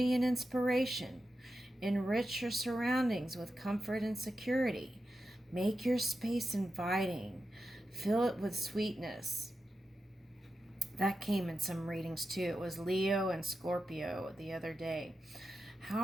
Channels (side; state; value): both; normal; correlation 0.90